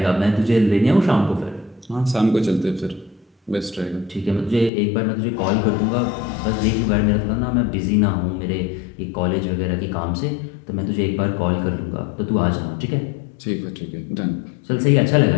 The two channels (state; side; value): drops out; right; at 4.7 s